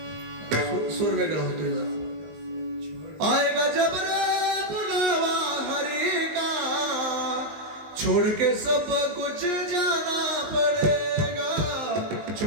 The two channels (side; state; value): left; late; 19 ms